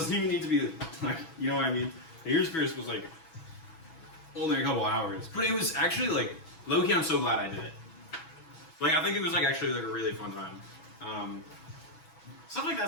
even need to be like, you know what I mean? The ears pierced was like only a couple hours, but it was actually like low key. I'm so glad I did it. Like I think it was like actually like a really fun time. Stuff like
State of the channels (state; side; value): late; right; 6.1 ms